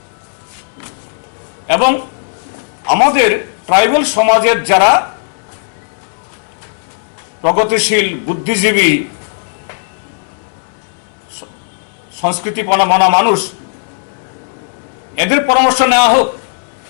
এবং আমাদের ট্রাইবেল সমাজের যারা প্রগতিশীল, বুদ্ধিজীবী, সংস্কৃতিপনা মানা মানুষ, এদের পরামর্শ নেওয়া হোক।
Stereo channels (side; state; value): right; silent; digital silence